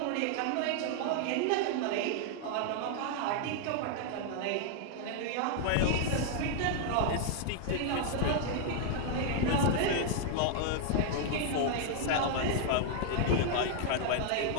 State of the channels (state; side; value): different; both; correlation 0.00